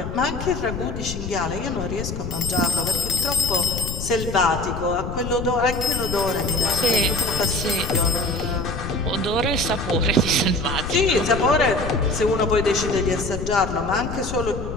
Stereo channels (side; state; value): left; noise; rumble, 6 dB below the sound